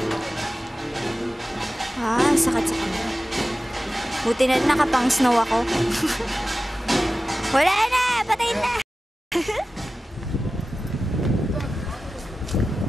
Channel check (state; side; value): normal; both; correlation 0.95